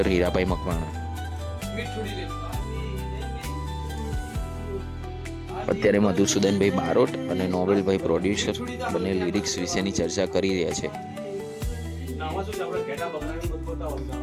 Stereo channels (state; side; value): identical; both; correlation 1.00